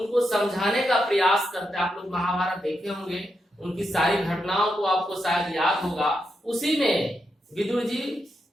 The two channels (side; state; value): both; normal; correlation 0.84